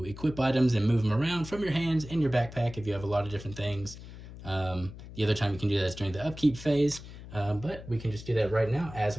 equip items and move them around from your hands in your backpack if you have a lot of different things. The other time you can do that is during the upkeep phase, but we can just do that right now as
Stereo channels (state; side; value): noise; left; hum, 14 dB below the sound